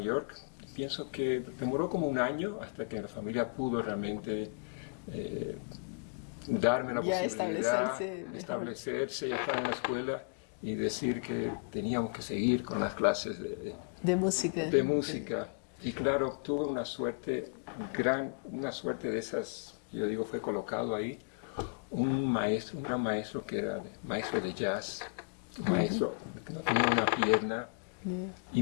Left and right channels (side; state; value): right; quieter; 39.7 dB